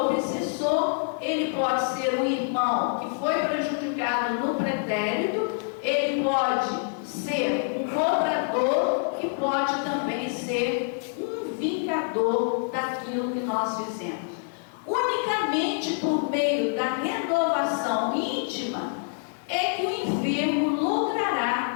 ele pode ser um irmão que foi prejudicado no pretérito, ele pode ser um cobrador e pode também ser um vingador daquilo que nós fizemos. Unicamente por meio da renovação íntima é que o enfermo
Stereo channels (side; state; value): right; silent; 61 dB below the other